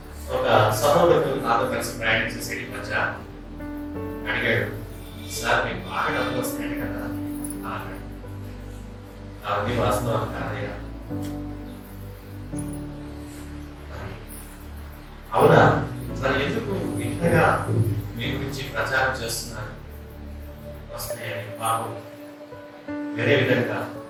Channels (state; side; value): identical; both; correlation 1.00